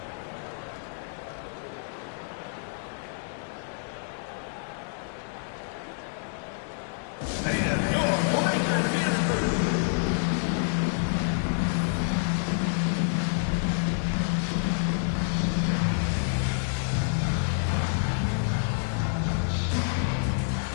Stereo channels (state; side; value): silent; right; digital silence